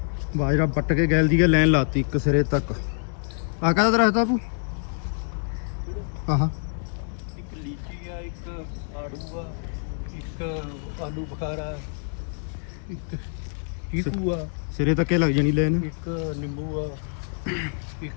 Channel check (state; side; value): silent; right; 58 dB below the other